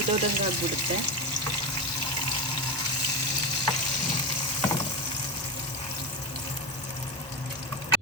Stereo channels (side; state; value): both; normal; correlation 0.19